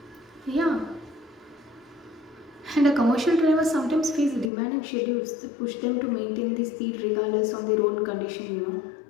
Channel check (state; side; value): drops out; right; at 4.5 s